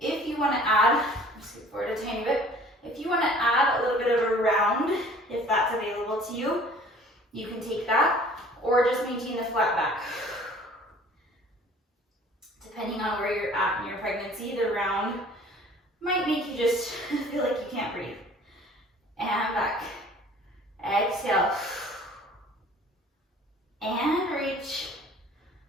you want to add, scoot forward a tiny bit, if you want to add a little bit of a round, if that's available to you, you can take that, or just maintain the flat back. Depending on where you're at in your pregnancy, the round might make you just feel like you can't breathe. And back. Exhale. And reach.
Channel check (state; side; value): normal; both; correlation 0.50